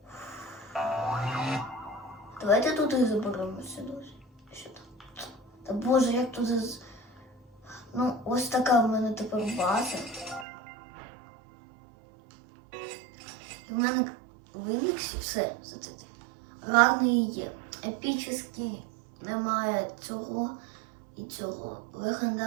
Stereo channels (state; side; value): drops out; left; at 10.5 s